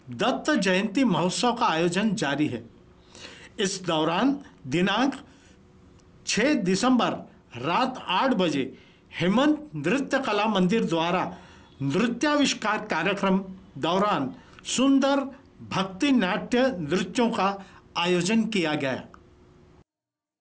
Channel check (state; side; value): identical; both; correlation 1.00